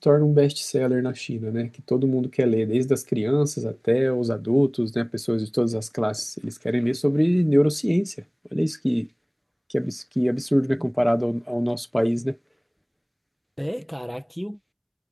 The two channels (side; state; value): both; identical; correlation 1.00